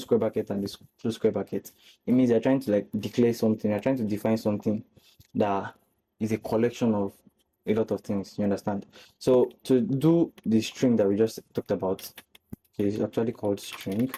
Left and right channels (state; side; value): identical; both; correlation 1.00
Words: bracket and this close square bracket, it means you're trying to like declare something, you're trying to define something that is a collection of a lot of things. You understand? So to do the string that we just talked about, okay, it's actually called string.